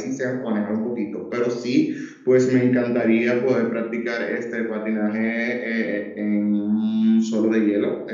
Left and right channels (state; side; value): identical; both; correlation 1.00